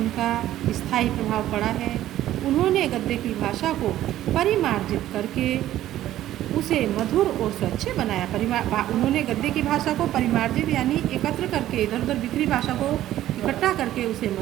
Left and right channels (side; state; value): left; quieter; 13.4 dB